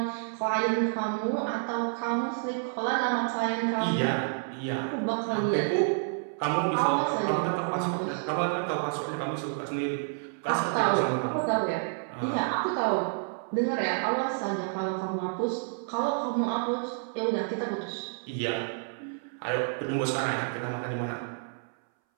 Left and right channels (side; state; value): left; silent; 58 dB below the other